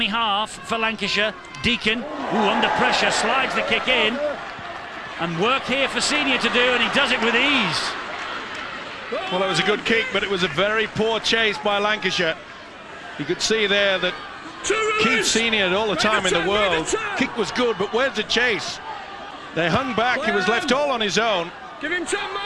half for Lancashire. Deacon, under pressure, slides the kick in, and work here for Senior to do, and he does it with ease. Well, it was a good kick, but it was a very poor chase by Lancashire. You could see there that Keith Senior had all the time in the world. Kick was good, but where's the chase? They hung back, he was left all on his own. Give him time,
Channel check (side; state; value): both; identical; correlation 1.00